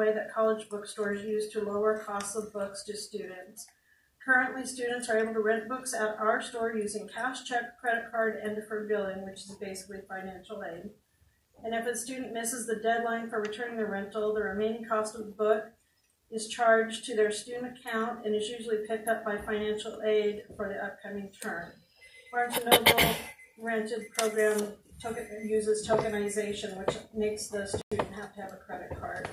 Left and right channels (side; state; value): both; identical; correlation 1.00